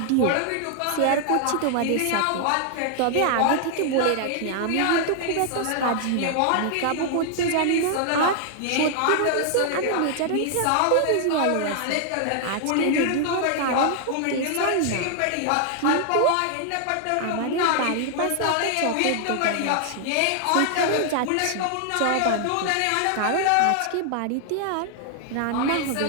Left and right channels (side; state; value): both; different; correlation 0.00